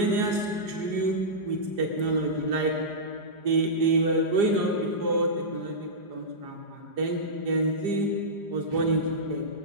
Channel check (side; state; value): left; late; 4.9 ms